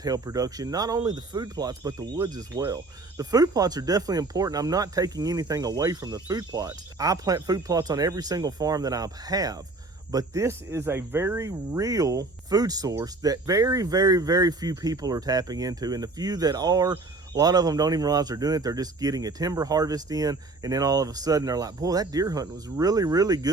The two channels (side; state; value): left; quieter; 3.3 dB